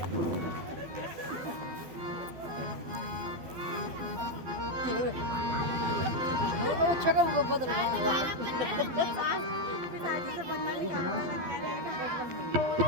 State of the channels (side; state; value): left; late; 12 ms